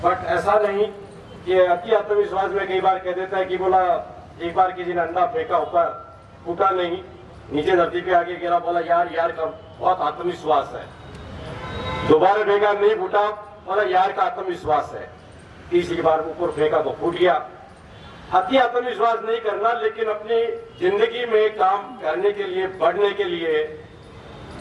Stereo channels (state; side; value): identical; both; correlation 1.00